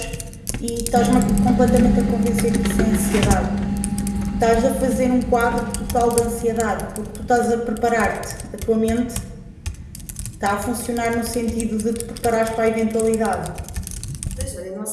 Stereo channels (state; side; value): identical; both; correlation 1.00